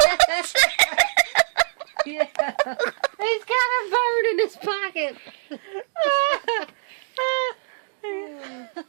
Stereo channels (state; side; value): silent; left; digital silence